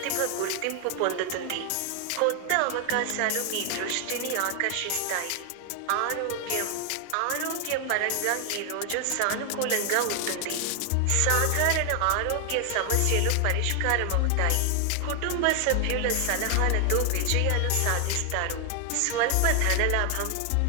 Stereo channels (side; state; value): both; different; correlation 0.00